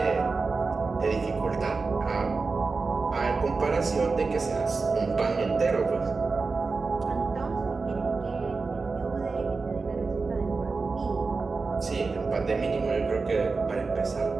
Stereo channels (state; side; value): quieter; left; 4.2 dB